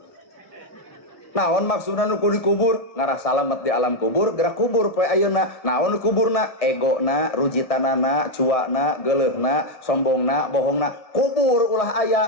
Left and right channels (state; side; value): late; right; 1.6 ms